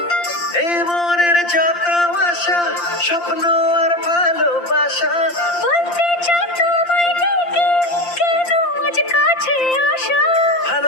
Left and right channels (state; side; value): late; right; 5.8 ms